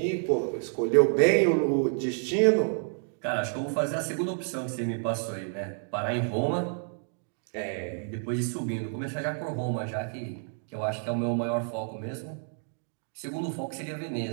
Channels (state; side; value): silent; left; 58 dB below the other